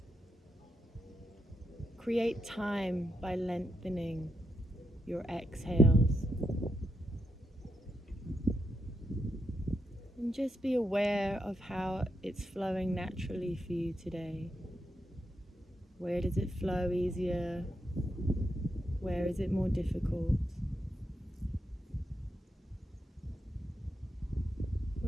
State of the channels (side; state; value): both; normal; correlation 0.83